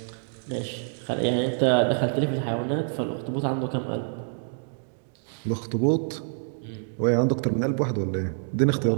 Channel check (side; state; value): left; silent; digital silence